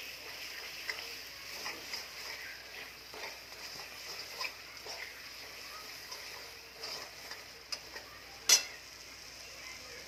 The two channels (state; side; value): identical; both; correlation 1.00